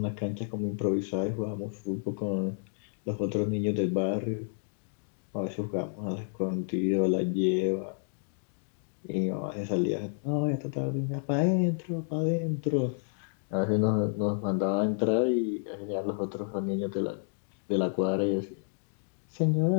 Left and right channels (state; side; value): silent; right; digital silence